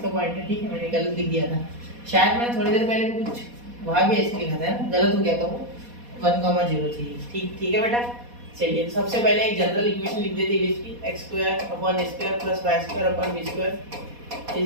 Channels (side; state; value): left; late; 4.2 ms